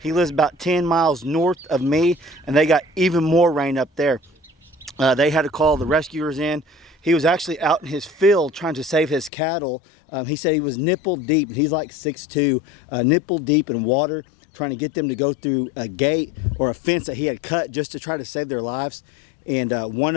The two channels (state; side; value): drops out; right; at 9.3 s